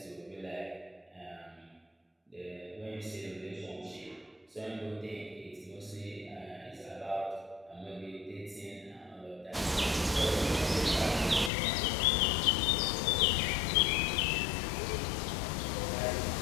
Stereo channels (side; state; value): right; drops out; at 11.5 s